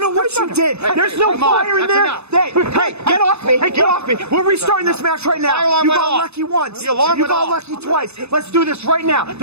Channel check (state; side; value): late; left; 0.80 ms